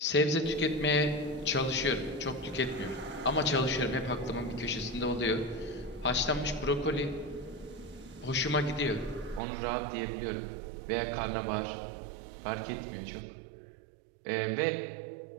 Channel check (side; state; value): left; drops out; at 9.4 s